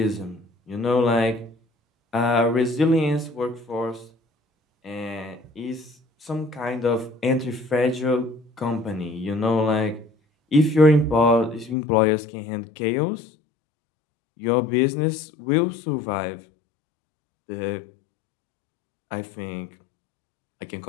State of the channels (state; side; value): drops out; right; at 11.8 s